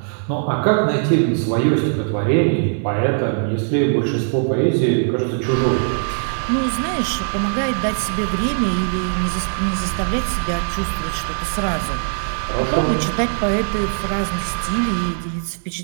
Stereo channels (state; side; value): silent; left; digital silence